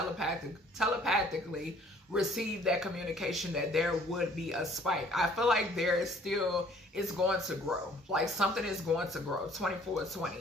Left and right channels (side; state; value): both; normal; correlation 0.57